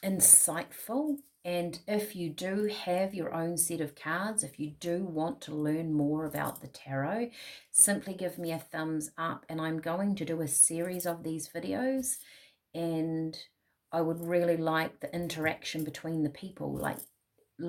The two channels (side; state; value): both; identical; correlation 1.00